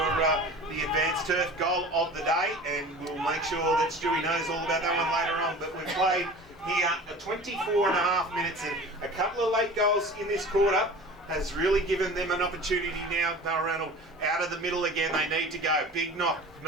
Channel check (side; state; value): both; normal; correlation 0.39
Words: the advanced turf goal of the day. And we'll make sure that Stewie knows all about that one later on. But we've played here 24 and a half minutes and a couple of late goals in this quarter. has really given them an opportunity now. Balranald out of the middle again. They need to go. Big knock.